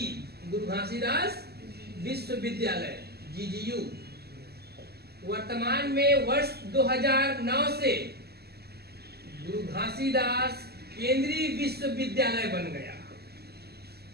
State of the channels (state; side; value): late; left; 0.46 ms